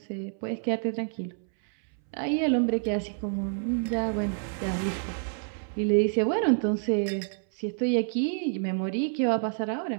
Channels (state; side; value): silent; left; 59 dB below the other